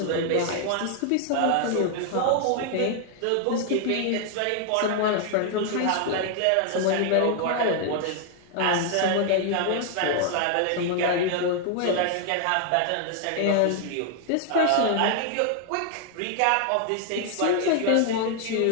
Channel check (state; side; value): different; both; correlation 0.00